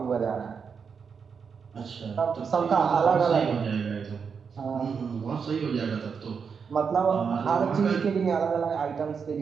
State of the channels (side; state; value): left; quieter; 6.1 dB